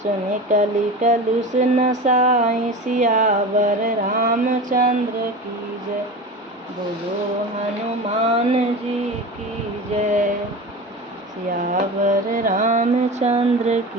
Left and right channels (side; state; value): both; normal; correlation 0.30